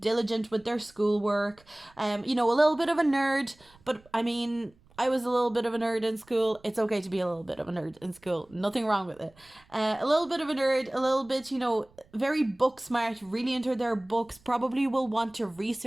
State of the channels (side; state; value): right; noise; rumble, 29 dB below the sound